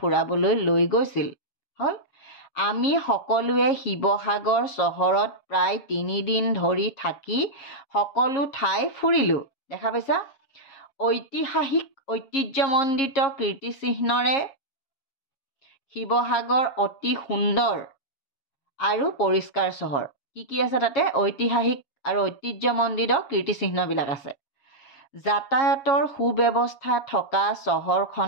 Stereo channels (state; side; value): late; right; 7.4 ms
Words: লৈ গৈছিল। হ'ল, আমি সকলোৱে শিৱসাগৰ চহৰত প্ৰায় 3 দিন ধৰি থাকি সকলো ঠাই ফুৰিলোঁ। দেখা পাইছা, ঐতিহাসিক ঐতিহ্যমণ্ডিত কীৰ্তিচিহ্নৰে শিৱসাগৰ অতি সুন্দৰ আৰু পৰিষ্কাৰ চহৰ। কি আছে তাতে? ঐতিহাসিক আৰু ঐতিহ্যমণ্ডিত কীৰ্তিচিহ্নবিলাক আছে। যাতায়াতৰ সুব্যৱস্থা থকা